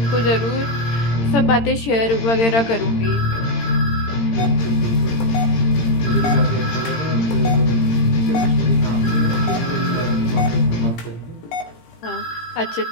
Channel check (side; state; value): right; late; 18 ms